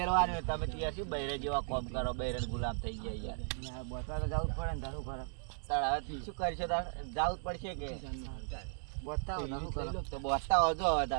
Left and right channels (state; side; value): silent; left; 54 dB below the other